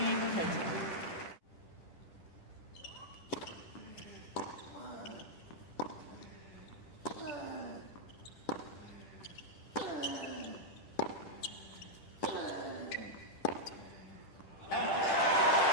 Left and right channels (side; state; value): right; late; 10 ms